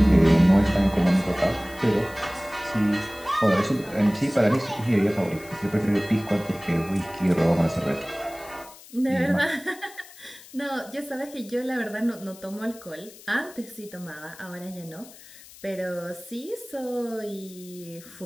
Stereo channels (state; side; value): noise; left; hiss, 20 dB below the sound